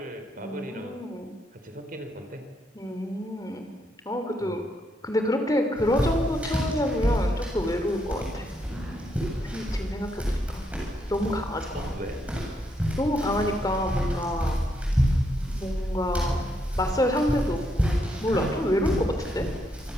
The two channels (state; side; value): normal; both; correlation 0.77